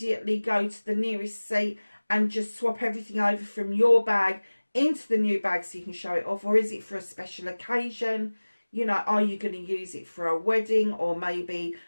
go to the nearest seat and just swap everything over from your bag into the new bag so you can show it off? Or is it for a special occasion? You know, are you going to use it for a wedding or maybe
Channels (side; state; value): both; inverted; correlation -1.00